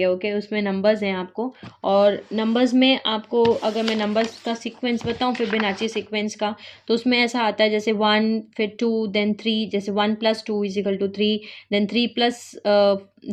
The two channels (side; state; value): both; identical; correlation 1.00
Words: ओके, उसमें नंबर्स हैं आपको, और नंबर्स में आपको अगर मैं नंबर्स का सीक्वेंस बताऊं फिबोनाची सीक्वेंस का, तो उसमें ऐसा आता है जैसे 1 फिर 2 देन 3, जैसे 1 + 2 = 3, देन 3 प्लस